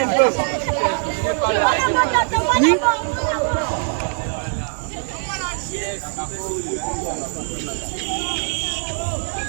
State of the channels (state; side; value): silent; left; digital silence